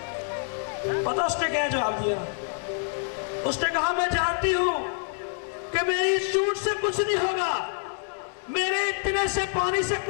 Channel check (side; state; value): right; silent; 60 dB below the other